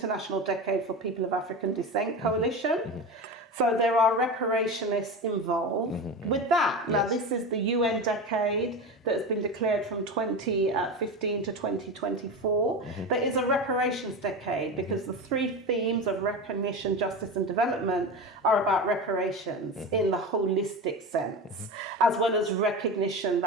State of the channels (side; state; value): both; normal; correlation 0.24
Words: Decade for People of African Descent Coalition. So there are reparationists involved with that. Now, this is the UN decade that has been declared from 2015 to 2024. That is a reparations decade because the three themes of recognition, justice and development are about reparations in the holistic sense, as well as recognition